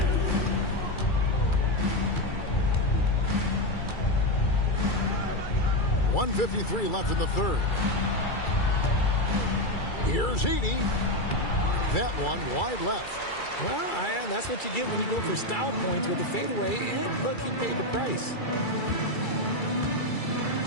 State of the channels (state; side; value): late; right; 2.3 ms